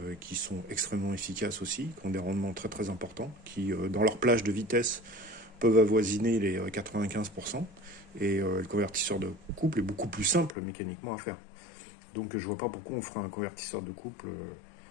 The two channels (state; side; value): drops out; right; at 10.6 s